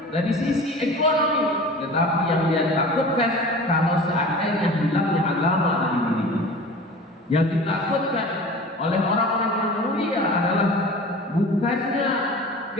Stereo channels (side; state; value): both; normal; correlation 0.39